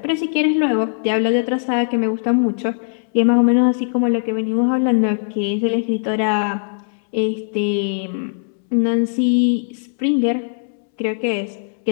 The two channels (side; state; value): right; silent; 66 dB below the other